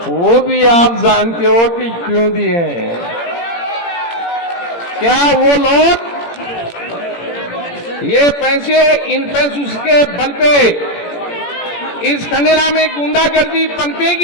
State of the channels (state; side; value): late; right; 17 ms